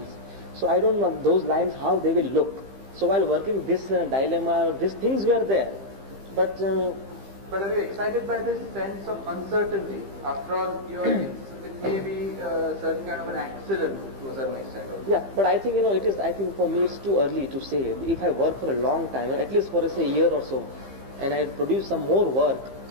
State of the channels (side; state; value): left; late; 15 ms